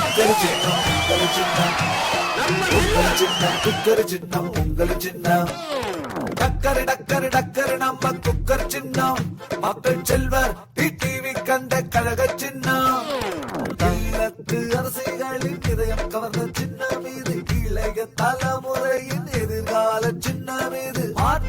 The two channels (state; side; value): identical; both; correlation 1.00